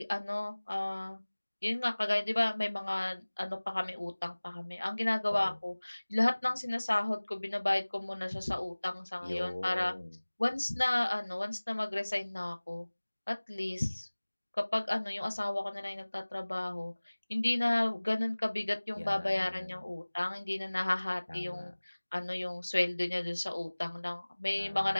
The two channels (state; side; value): inverted; both; correlation -1.00